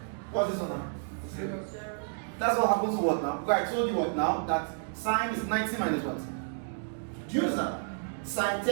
What's this one now? 0. That's what happens to what now? Because I told you what now? That sine is 90 minus what? Do you understand? Sine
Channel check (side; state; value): left; silent; digital silence